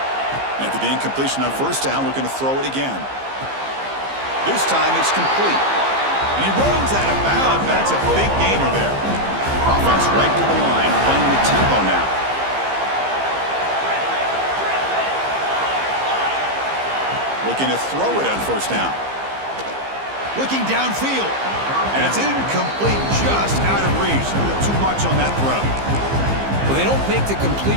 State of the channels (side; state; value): left; late; 15 ms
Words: After the incompletion on 1st down, looking to throw it again. This time it's complete. And he runs out of bounds. That's a big gainer there. Offense right to the line, playing with tempo now. Looking to throw it on 1st down. Looking downfield. And it's incomplete, just out of reach. A little too much on that throw. Well, they don't make the